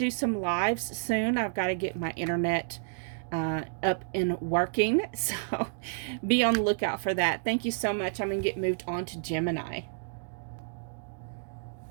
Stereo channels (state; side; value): silent; left; digital silence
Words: some lives soon. I've got to get my internet up and working, so be on the lookout for that. Thank you so much. I'm going to get moved on to Gemini.